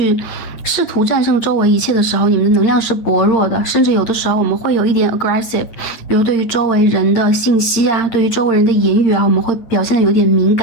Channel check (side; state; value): right; late; 9.1 ms